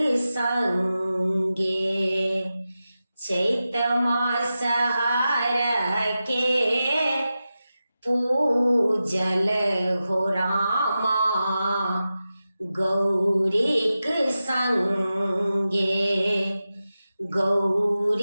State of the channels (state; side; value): inverted; both; correlation -0.93